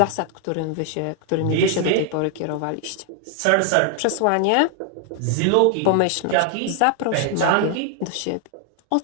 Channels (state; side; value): different; both; correlation 0.00